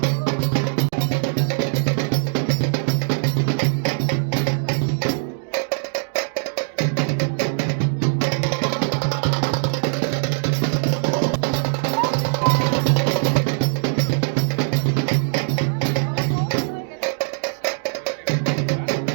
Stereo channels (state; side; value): silent; left; digital silence